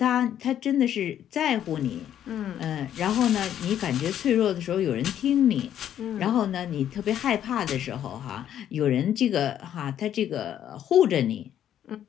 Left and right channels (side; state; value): right; quieter; 10.5 dB